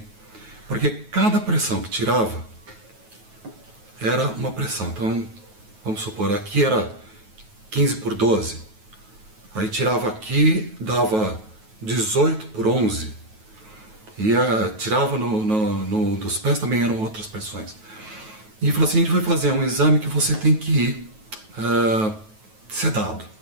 porque cada pressão que tirava era uma pressão. Então, vamos supor, aqui era 15 por 12, aí tirava aqui, dava 18 por 11, e tirava dos pés também eram outras pressões. E falou assim, a gente vai fazer um exame que você tem que ir sedado.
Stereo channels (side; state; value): left; late; 9.3 ms